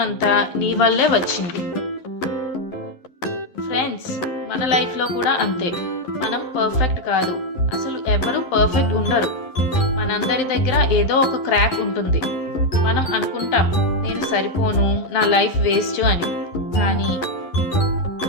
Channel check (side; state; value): right; late; 11 ms